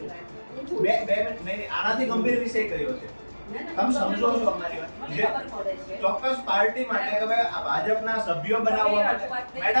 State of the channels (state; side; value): inverted; both; correlation -1.00